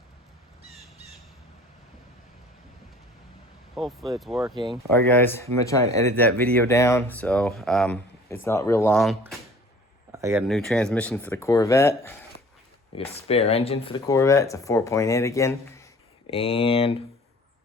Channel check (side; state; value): both; normal; correlation 0.49